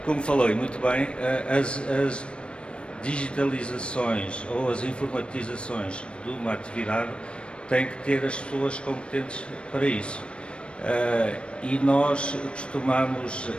como falou e muito bem, as digitalizações ou as informatizações de uma atividade têm que ter as pessoas competentes para isso. E nós costumamos,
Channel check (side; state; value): right; late; 0.057 ms